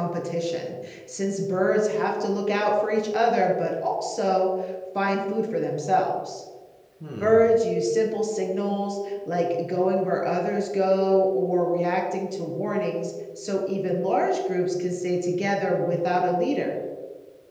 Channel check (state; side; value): identical; both; correlation 1.00